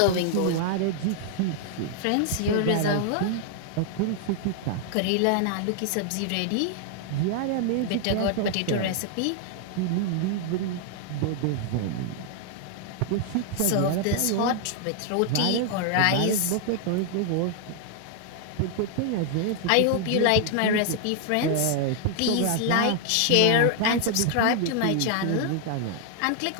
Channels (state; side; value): different; both; correlation 0.00